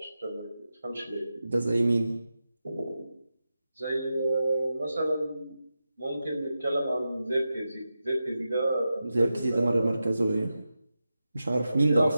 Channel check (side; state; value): both; inverted; correlation -0.91